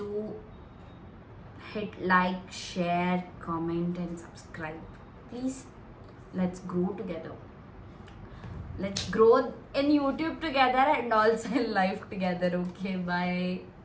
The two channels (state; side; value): identical; both; correlation 1.00